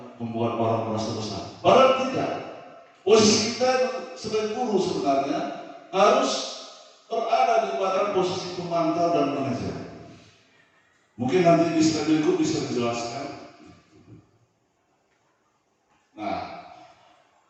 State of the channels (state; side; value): identical; both; correlation 1.00